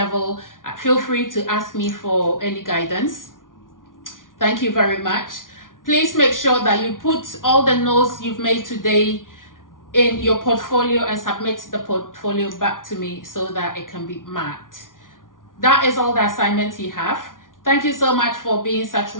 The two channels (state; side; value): late; right; 0.89 ms